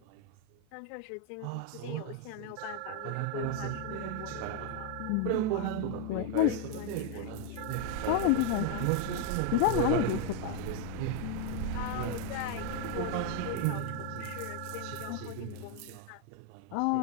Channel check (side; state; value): both; different; correlation 0.01